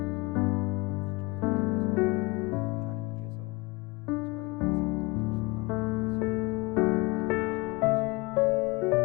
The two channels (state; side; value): quieter; right; 24.1 dB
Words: 오늘 이 기도회를 통해서 하나님께서 저와 여러분들의 삶 가운데 충만하게 임하시는 그런 귀한 기회가 되시기를